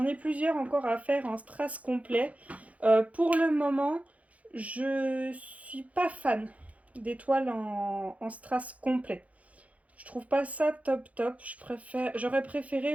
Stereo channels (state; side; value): late; left; 0.067 ms